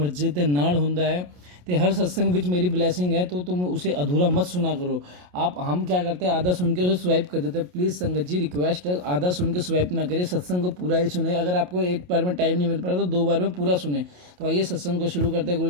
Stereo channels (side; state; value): left; late; 28 ms